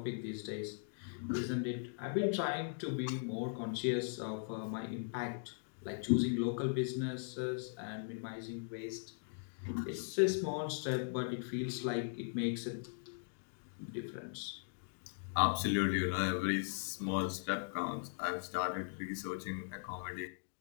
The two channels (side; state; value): right; silent; digital silence